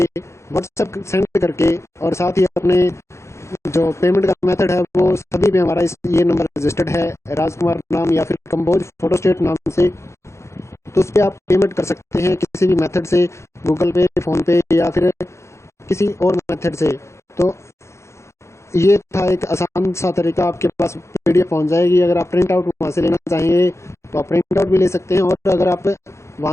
व्हाट्सएप सेंड करके और साथ ही अपने जो पेमेंट का मेथड है वो सभी पे हमारा ये नंबर रजिस्टर्ड है, राजकुमार नाम या फिर कंबोज फोटोस्टेट नाम से। तो उस पर आप पेमेंट कर सकते हैं किसी भी मेथड से, गूगल पे, फ़ोन पे या फिर किसी और मेथड से। तो ये था एक आसान सा तरीका, आपके पास पीडीएफ पहुंच जाएगी। अगर आप प्रिंट आउट वहाँ से लेना चाहेंगे तो आप प्रिंट आउट भी ले सकते हैं, और अगर आप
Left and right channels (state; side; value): late; right; 0.13 ms